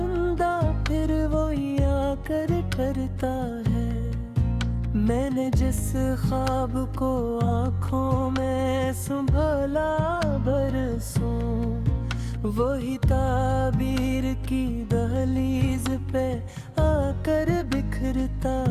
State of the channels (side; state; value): both; identical; correlation 1.00